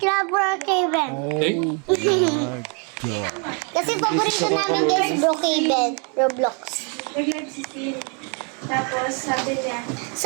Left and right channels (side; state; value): left; quieter; 37.3 dB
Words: Brookhaven. Okay? Kasi paborito namin guys, Brookhaven, Roblox. Nag-live si Siri. Tapos sabi niya,